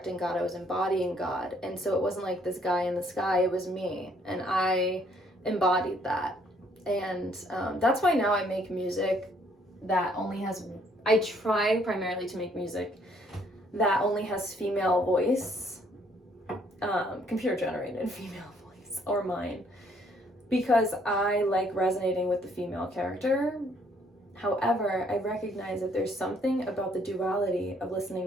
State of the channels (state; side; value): normal; both; correlation 0.65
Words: God, I was embodying God. And so it wasn't like this guy in the sky, it was me. And I embodied that. And that's why now I make music that only has, I try primarily to make music that only has female voice, computer generated female voice, or mine, because I like resonating with the female character. However, I recognize that there's something about the duality of